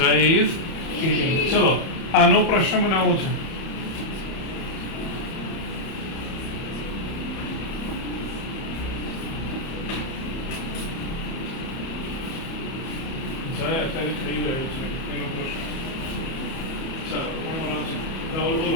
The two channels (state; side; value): late; right; 31 ms